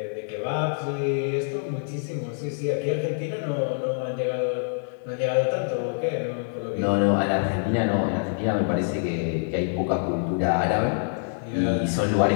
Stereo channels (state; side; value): silent; right; digital silence